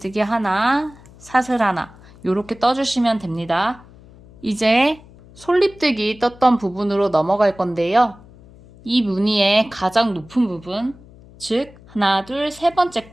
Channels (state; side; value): noise; left; hum, 23 dB below the sound